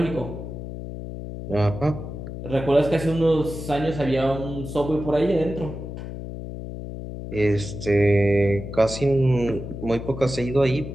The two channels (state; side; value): noise; left; hum, 9 dB below the sound